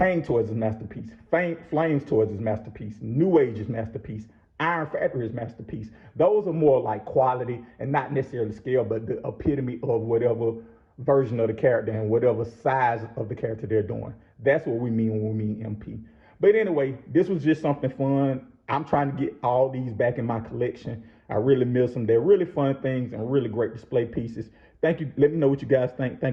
Toys is masterpiece. Flames Toys is masterpiece. New Age is masterpiece. Iron Factory is masterpiece. Those are more like quality and not necessarily scale, but the epitome of whatever version of the character and whatever size of the character they're doing. That's what we mean when we mean MP. But anyway, this was just something fun. I'm trying to get all these back in my collection. I really miss them. They're really fun things and really great display pieces. Thank you. Let me know what you guys think.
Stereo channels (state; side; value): identical; both; correlation 1.00